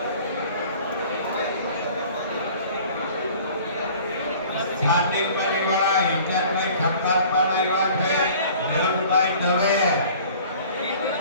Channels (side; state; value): both; inverted; correlation -0.48